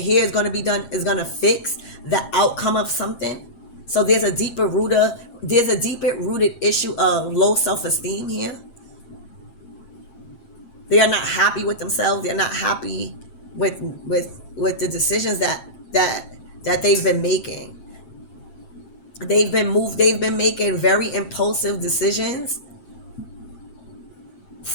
is going to be done is going to fix the outcome of something. So there's a deeper rooted issue of low self-esteem here. They are not happy with themselves. They're not happy with the decisions that they've been making. They've been making very impulsive decisions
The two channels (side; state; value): right; late; 7.6 ms